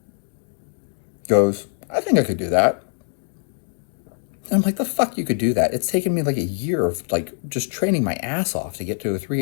goes, I think I could do that. And I'm like, the fuck you could do that? It's taken me like a year of like just training my ass off to get to a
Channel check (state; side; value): silent; right; digital silence